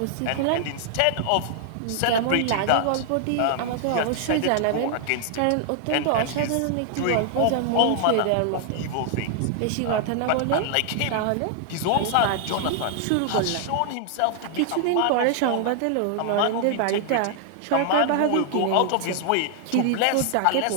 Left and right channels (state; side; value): different; both; correlation 0.00